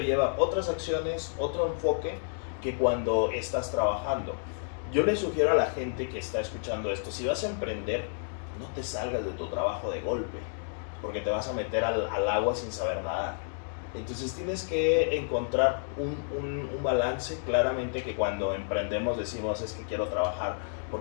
lleva otras acciones, otro enfoque que cuando estás trabajando. Yo le sugiero a la gente que está escuchando esto, si vas a emprender, no te salgas de tu trabajo de golpe, porque te vas a meter al agua sin saber nadar. Entonces tienes que encontrar un balance. Claramente que cuando emprendemos decimos, es que quiero trabajar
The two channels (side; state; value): right; silent; digital silence